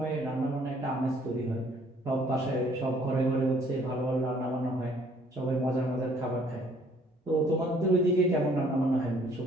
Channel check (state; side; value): normal; both; correlation 0.61